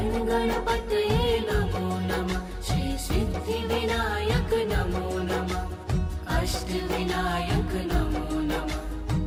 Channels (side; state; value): both; identical; correlation 1.00